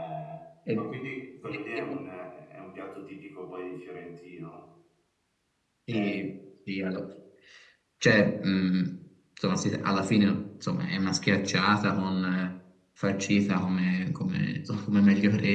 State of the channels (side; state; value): both; identical; correlation 1.00